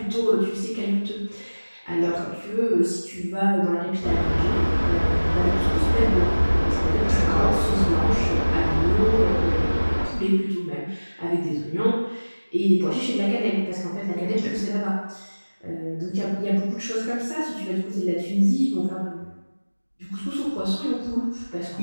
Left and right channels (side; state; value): both; inverted; correlation -1.00